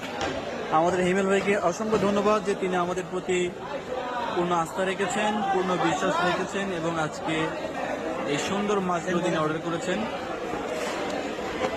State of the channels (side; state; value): both; identical; correlation 1.00